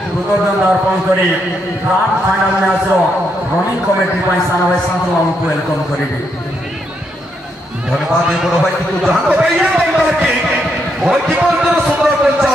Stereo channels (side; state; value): both; normal; correlation 0.78